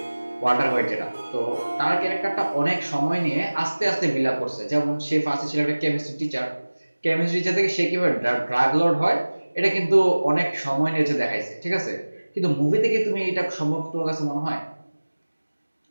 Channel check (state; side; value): inverted; both; correlation -1.00